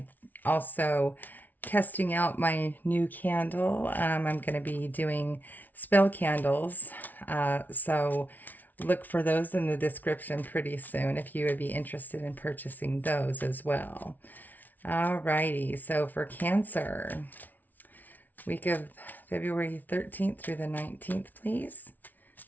also testing out my new candle. I'm going to be doing spell candles. So look for those in the description pretty soon if you would be interested in purchasing those as well. Alrighty, so for Cancer, week of February 13th through the 19th, please.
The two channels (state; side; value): late; right; 0.081 ms